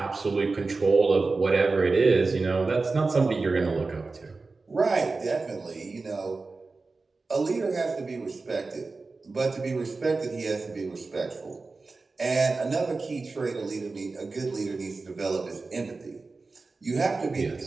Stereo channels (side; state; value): left; quieter; 3.9 dB